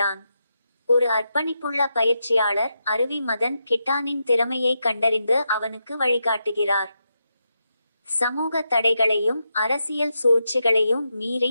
ஒரு அர்ப்பணிப்புள்ள பயிற்சியாளர் அருவி மதன் கிட்டானின் திறமையை கண்டறிந்து அவனுக்கு வழிகாட்டுகிறார். சமூக தடைகளையும் அரசியல் சூழ்ச்சிகளையும்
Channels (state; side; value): inverted; both; correlation -0.85